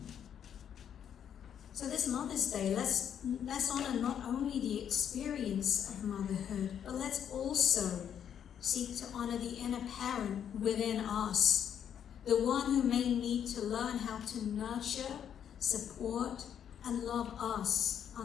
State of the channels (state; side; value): quieter; right; 8.9 dB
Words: So this Mother's Day, let's honor not only the experience of motherhood, but let's also seek to honor the inner parent within us, the one who may need to learn how to nurture, support, and love us